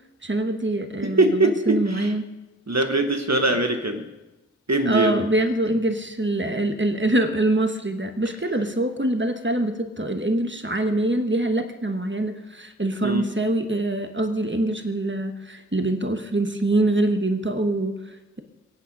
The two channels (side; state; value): both; normal; correlation 0.48